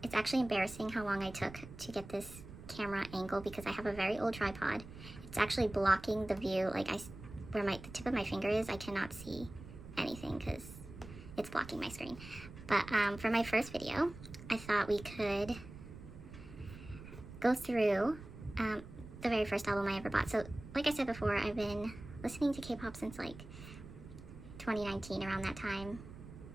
It's actually embarrassing how long I took to get this camera angle, because I have a very old tripod. It's actually blocking the view. Like where the tip of my finger is, I cannot see anything because it's blocking my screen. But for my first video, I thought we could go through the very first album I ever bought. So like I said before, I've been listening to K-pop since like 2019, around that time.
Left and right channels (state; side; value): noise; right; rumble, 14 dB below the sound